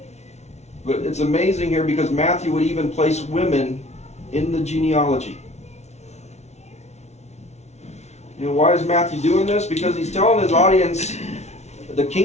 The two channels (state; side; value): late; right; 0.32 ms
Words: But it's amazing here because Matthew would even place women in the genealogy. Why is Matthew doing this? Because he's telling his audience the